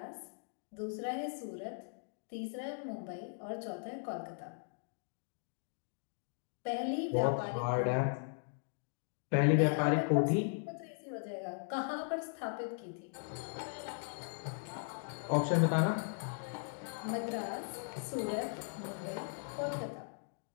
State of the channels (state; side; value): silent; right; digital silence